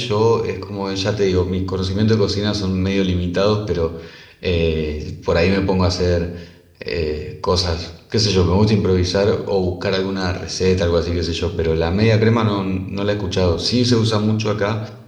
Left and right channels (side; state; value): both; identical; correlation 1.00